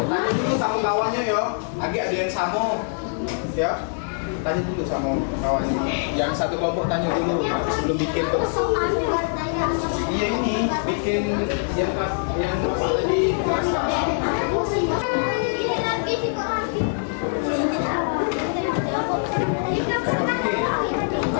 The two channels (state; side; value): silent; right; 63 dB below the other